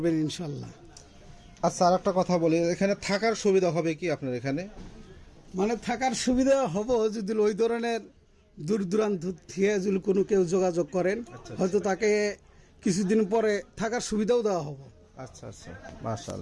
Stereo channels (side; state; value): both; identical; correlation 1.00